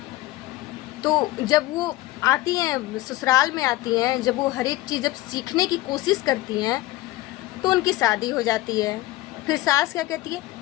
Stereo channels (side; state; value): right; quieter; 18.1 dB